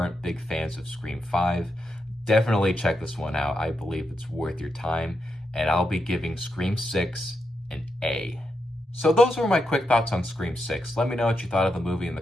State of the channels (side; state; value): both; normal; correlation 0.84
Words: big fans of Scream 5. Definitely check this one out. I believe it's worth your time, and I'll be giving Scream 6 an A. So those were my quick thoughts on Scream 6. Let me know what you thought of the movie in the